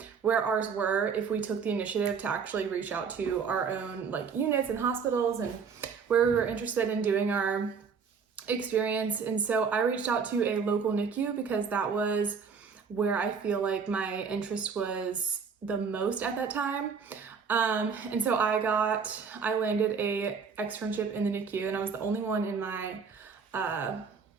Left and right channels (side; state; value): left; quieter; 5.9 dB